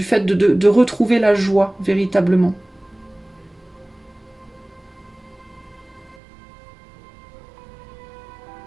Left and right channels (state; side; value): drops out; left; at 6.2 s